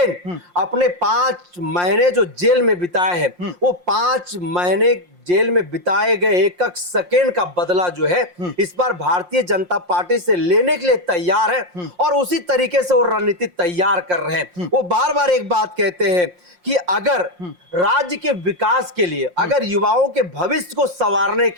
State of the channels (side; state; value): left; late; 5.6 ms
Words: अपने 5 महीने जो जेल में बिताए हैं, वो 5 महीने जेल में बिताए गए एक एक सेकेंड का बदला जो है इस बार भारतीय जनता पार्टी से लेने के लिए तैयार है और उसी तरीके से वो रणनीति तैयार कर रहे हैं। वो बार बार एक बात कहते हैं कि अगर राज्य के विकास के लिए, अगर युवाओं के भविष्य को संवारने